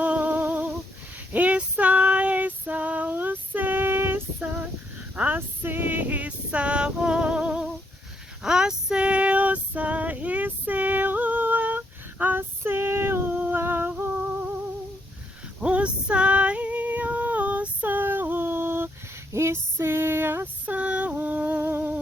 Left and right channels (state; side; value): normal; both; correlation 0.75